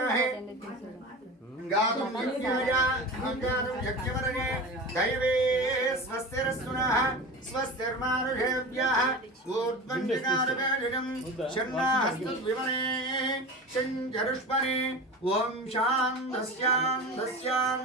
गातुं यज्ञवरणे दैवे स्वस्तिरस्तुनः स्वस्तिर्मानुषेभ्यः ऊर्ध्वञ्जनारवेदिनं शन्नास्तद्विमने शञ्जरुष्पने ॐ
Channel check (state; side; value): normal; both; correlation 0.31